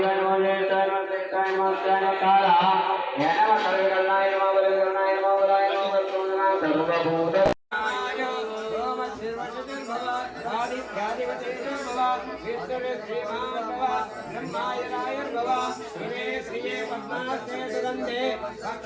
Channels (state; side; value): identical; both; correlation 1.00